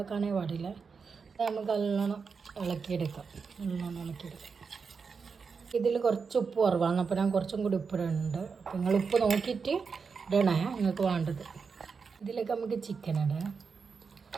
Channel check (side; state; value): left; quieter; 5.4 dB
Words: പാടില്ല. ഇത് നമുക്ക് നല്ലോണം ഇളക്കിയെടുക്കാം. ഇതിൽ കുറച്ച് ഉപ്പ് കുറവാണ്, അപ്പോൾ ഞാൻ കുറച്ചും കൂടി ഉപ്പിടുന്നുണ്ട്. അപ്പോൾ നിങ്ങൾ ഉപ്പ് നോക്കിയിട്ട് ഇടണേ നിങ്ങൾക്ക് വേണ്ടത്. ഇതിലേക്ക് നമുക്ക് ചിക്കൻ ഇടാം.